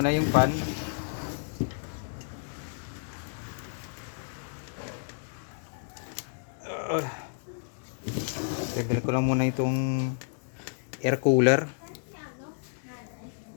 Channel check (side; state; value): right; silent; digital silence